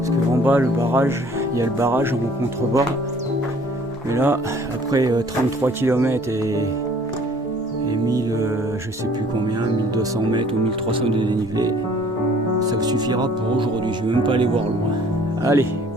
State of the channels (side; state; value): both; normal; correlation 0.55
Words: qu'en bas, le barrage, il y a le barrage en contrebas. Mais là, après 33 km et 1000, je sais plus combien, 1200 mètres ou 1300 de dénivelé, ça suffira pour aujourd'hui. Je ne vais même pas aller voir loin. Allez,